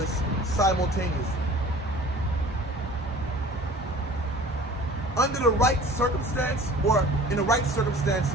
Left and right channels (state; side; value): normal; both; correlation 0.45